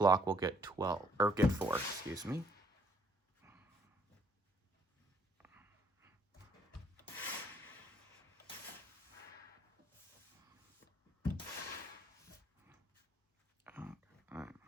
will get 4, excuse me.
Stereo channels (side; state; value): both; normal; correlation 0.65